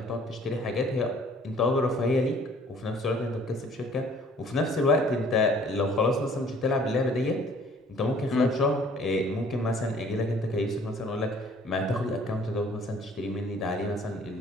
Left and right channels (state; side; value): normal; both; correlation 0.56